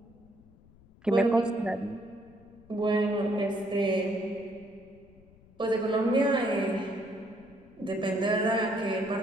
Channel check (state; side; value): noise; left; rumble, 26 dB below the sound